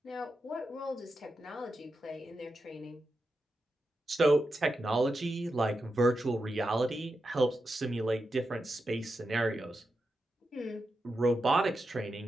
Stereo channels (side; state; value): both; normal; correlation 0.88